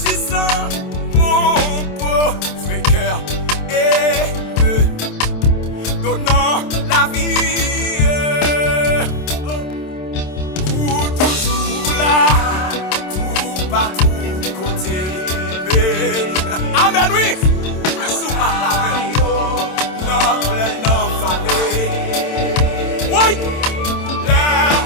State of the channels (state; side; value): late; right; 27 ms